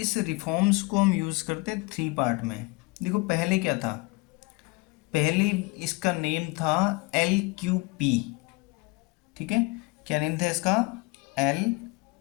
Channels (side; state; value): right; quieter; 24.9 dB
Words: रिफॉर्म्स को हम यूज़ करते हैं 3 पार्ट में। देखो पहले क्या था, पहले इसका नेम था LQP। ठीक है, क्या नेम था इसका? एल